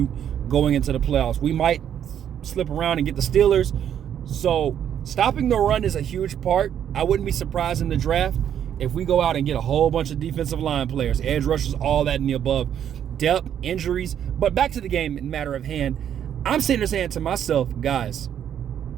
going into the playoffs. We might slip around and get the Steelers. So stopping the run is a huge part. I wouldn't be surprised in the draft if we go out and get a whole bunch of defensive line players, edge rushers, all that and the above. Depth, injuries. But back to the game in matter of hand, I'm sitting there saying to myself, guys,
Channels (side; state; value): left; quieter; 9.5 dB